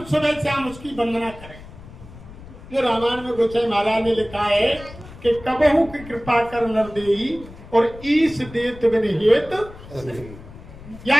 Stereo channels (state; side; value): noise; left; rumble, 17 dB below the sound